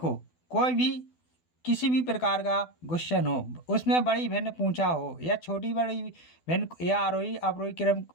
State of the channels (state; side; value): late; right; 12 ms